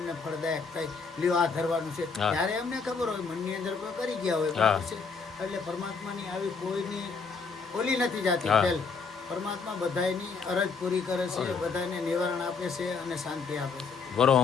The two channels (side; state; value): right; quieter; 5.1 dB